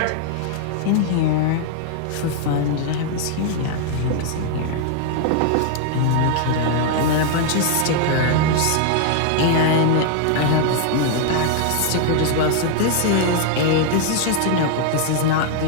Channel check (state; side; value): different; both; correlation 0.00